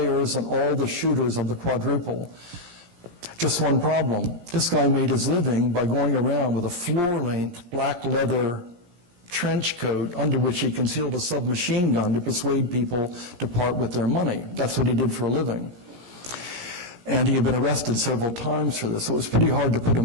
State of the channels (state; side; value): late; left; 17 ms